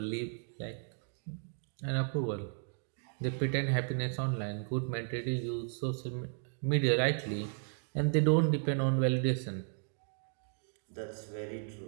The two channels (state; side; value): silent; left; 55 dB below the other